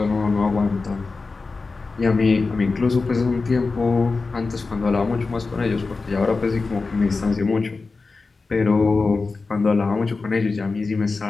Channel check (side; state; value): right; quieter; 4.0 dB